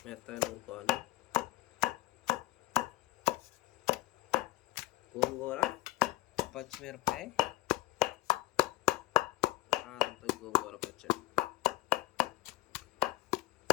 మెత్తగా నూరుకోవాలి. గోంగూర, పచ్చిమిరపకాయ, కారంతో గోంగూర పచ్చడి.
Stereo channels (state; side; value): quieter; right; 17.9 dB